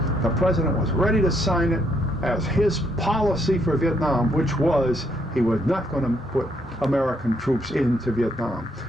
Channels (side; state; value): both; normal; correlation 0.72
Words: the president was ready to sign it as his policy for Vietnam, which was he was not going to put American troops into Vietnam.